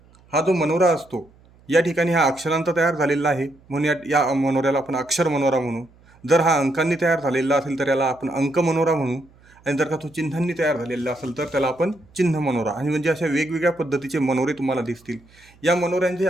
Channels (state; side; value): noise; right; hum, 28 dB below the sound